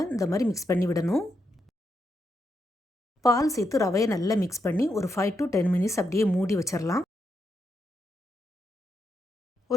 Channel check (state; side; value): normal; both; correlation 0.82